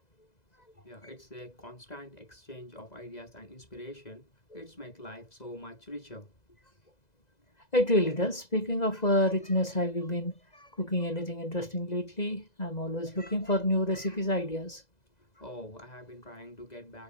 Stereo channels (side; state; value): right; late; 2.0 ms